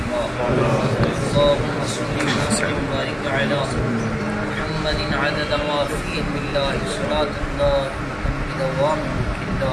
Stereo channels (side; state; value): both; identical; correlation 1.00